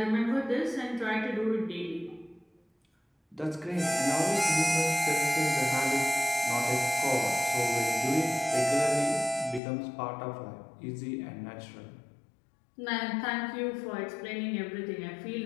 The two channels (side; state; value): right; drops out; at 9.6 s